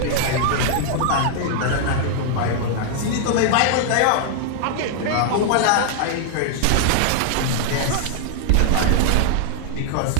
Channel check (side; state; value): both; different; correlation -0.01